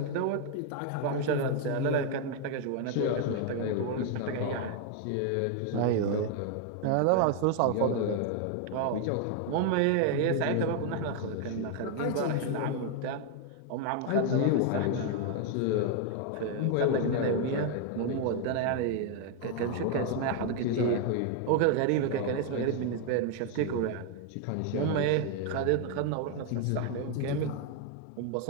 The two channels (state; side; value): different; both; correlation 0.01